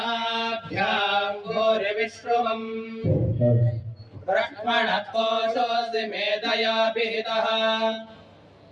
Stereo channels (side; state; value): both; identical; correlation 1.00